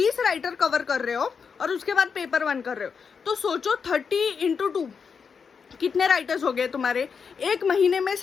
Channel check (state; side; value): quieter; right; 6.0 dB